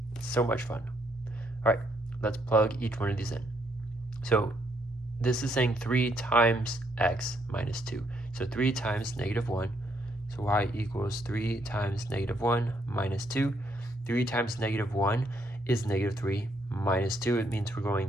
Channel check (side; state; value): both; normal; correlation 0.73